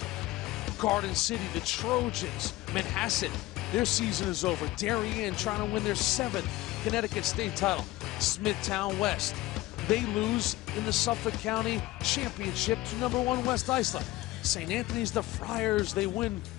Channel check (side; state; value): right; quieter; 17.8 dB